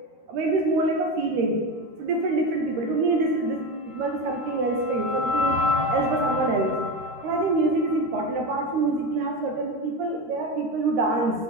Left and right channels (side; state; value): left; late; 13 ms